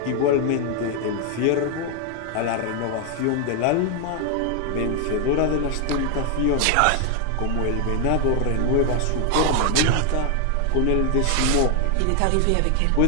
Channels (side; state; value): both; different; correlation 0.00